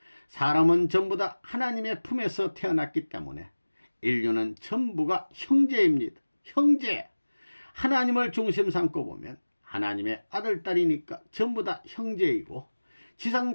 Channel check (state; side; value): inverted; both; correlation -1.00